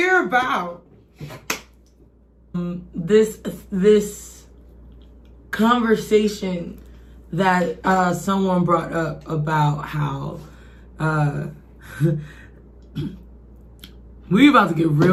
about this conversation that someone brought up about how we about to get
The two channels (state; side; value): identical; both; correlation 1.00